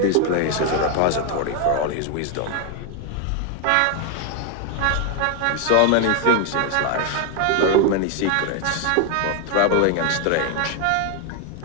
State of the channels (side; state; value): both; different; correlation 0.01